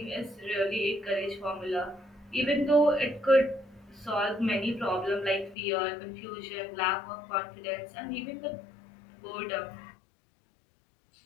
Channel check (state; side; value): drops out; right; at 5.6 s